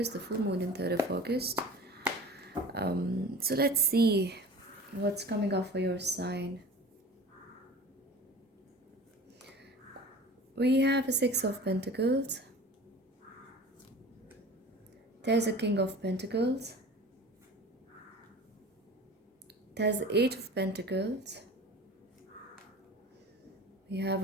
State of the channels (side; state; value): both; normal; correlation 0.39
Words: the full moon in 3rd of August. So let's see what's coming up for your sign. We have a Six of Pentacles. There's a King of Pentacles. There's the Eight of Pentacles. We have